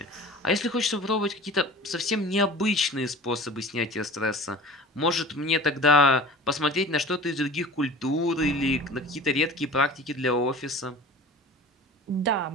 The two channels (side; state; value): both; normal; correlation 0.39